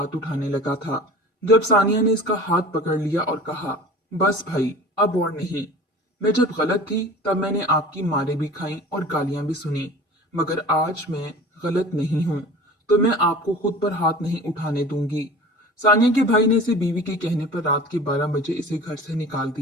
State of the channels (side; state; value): both; normal; correlation 0.40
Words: उठाने लगा था, जब सानिया ने इसका हाथ पकड़ लिया और कहा, बस भाई, अब और नहीं। मैं जब गलत थी तब मैंने आपकी मारें भी खाई और गालियां भी सुनी, मगर आज मैं गलत नहीं हूं, तो मैं आपको खुद पर हाथ नहीं उठाने दूंगी। सानिया के भाई ने इसे बीवी के कहने पर रात के 12 बजे इसे घर से निकाल